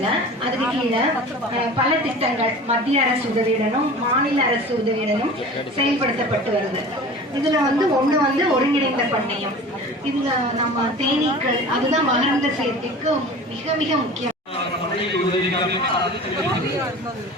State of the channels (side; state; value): both; normal; correlation 0.39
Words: அதுக்கு கீழே பல திட்டங்கள் மத்திய அரசு உதவியுடனும் மாநில அரசு உதவியுடனும் செயல்படுத்தப்பட்டு வருது. இதுல வந்து ஒண்ணு வந்து ஒருங்கிணைந்த பண்ணையம். இதுல நம்ம தேனீக்கள் அதுதான் மகரந்த சேர்க்கைக்கு மிக மிக முக்கியம்.